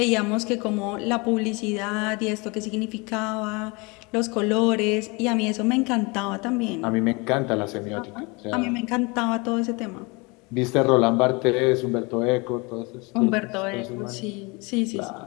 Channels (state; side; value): quieter; right; 27.8 dB